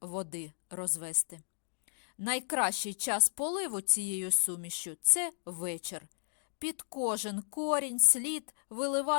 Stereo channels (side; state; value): right; silent; digital silence